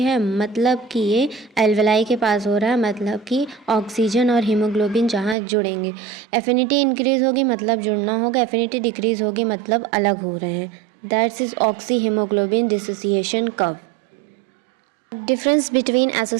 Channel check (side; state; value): left; drops out; at 5.4 s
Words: मतलब कि ये एल्वेलाई के पास हो रहा है, मतलब कि ऑक्सीजन और हीमोग्लोबिन जहाँ जुड़ेंगे। एफिनिटी इंक्रीज़ होगी मतलब जुड़ना होगा, एफिनिटी डिक्रीज़ होगी मतलब अलग हो रहे हैं। That's is oxy haemoglobin dissociation curve. Difference between